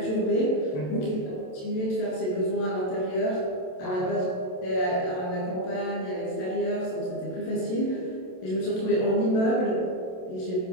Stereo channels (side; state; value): right; late; 27 ms